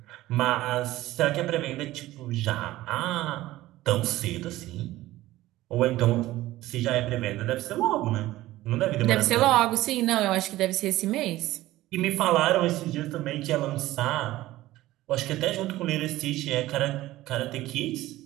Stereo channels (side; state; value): left; quieter; 16.4 dB